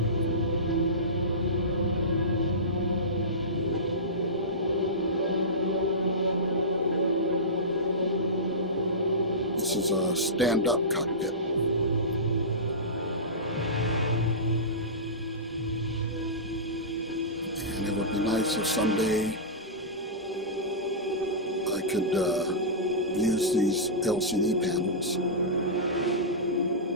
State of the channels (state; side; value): normal; both; correlation -0.19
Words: This is a stand-up cockpit. And it would be nice if someday I could use these LCD panels.